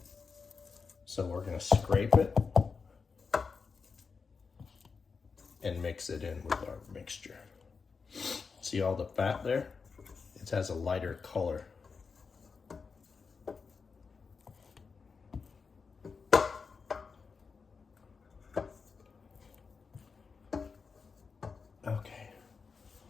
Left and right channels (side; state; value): right; quieter; 5.1 dB